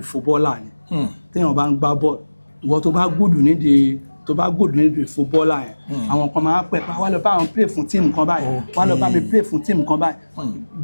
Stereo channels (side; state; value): both; inverted; correlation -1.00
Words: ni téèyàn bá ń gbá bọ́ọ̀lù ìwọ tó bá gùdù nídìí footballer yẹn àwọn kan máa pẹ̀ wá lọ bá àwọn play fún tíìmù kan báyìí wá lọ bá mi play fún tíìmù kan báyìí